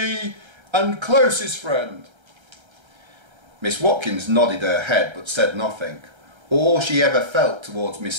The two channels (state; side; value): late; left; 1.3 ms